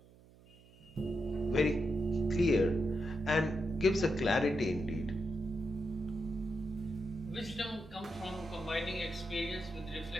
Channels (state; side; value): noise; right; hum, 25 dB below the sound